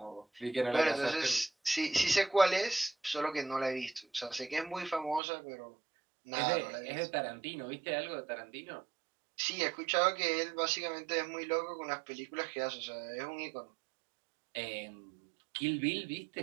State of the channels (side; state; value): left; drops out; at 5.2 s